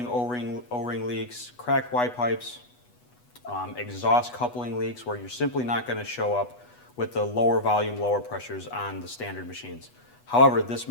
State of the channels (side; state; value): right; late; 8.2 ms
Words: O-ring leaks, cracked Y pipes, exhaust coupling leaks where you're simply not going to show up with the lower volume, lower pressures on the standard machines. However, this